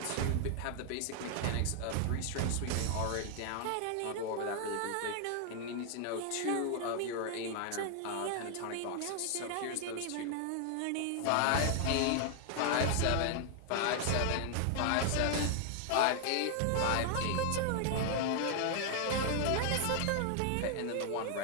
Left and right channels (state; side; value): different; both; correlation 0.00